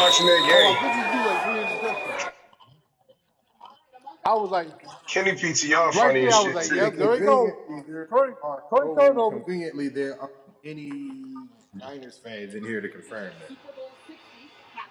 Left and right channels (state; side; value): identical; both; correlation 1.00